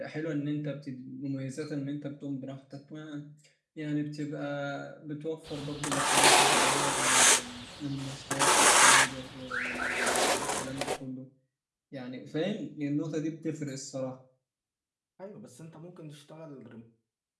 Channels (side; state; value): both; identical; correlation 1.00